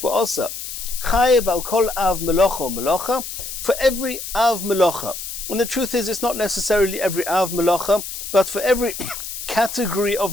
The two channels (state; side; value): noise; left; hiss, 8 dB below the sound